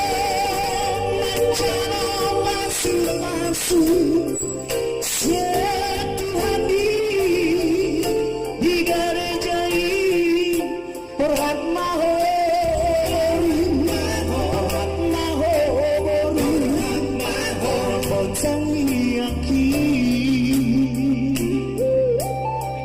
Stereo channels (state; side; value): identical; both; correlation 1.00